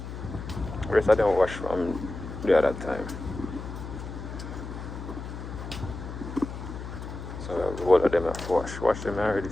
The rest of them wash from the other time. So we have the whole of them have wash. Wash them already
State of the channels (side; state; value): left; noise; hum, 9 dB below the sound